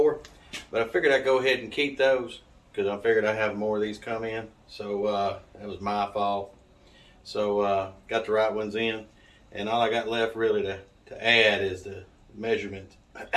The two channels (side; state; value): both; identical; correlation 1.00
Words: but I figured I'd go ahead and keep those because I figured I'd have more of these come in. So that was my fault. So got the right ones in, and all I got left really to add is the measurement,